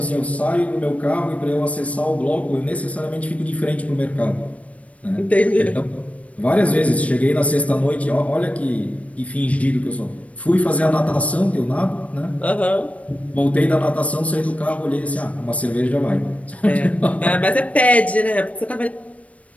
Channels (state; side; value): late; right; 0.066 ms